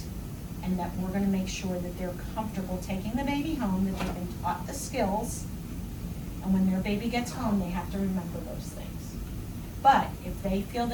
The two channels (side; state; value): both; identical; correlation 1.00